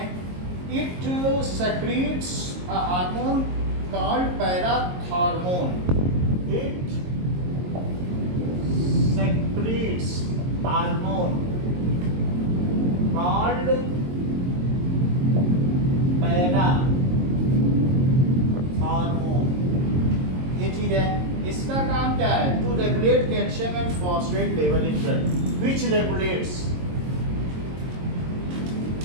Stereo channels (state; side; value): late; left; 22 ms